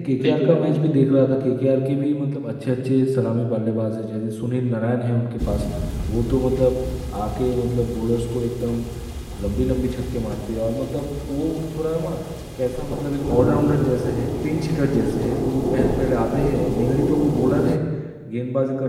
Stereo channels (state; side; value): identical; both; correlation 1.00